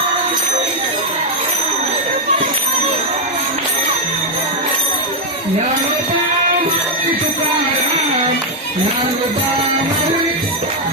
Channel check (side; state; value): both; normal; correlation 0.00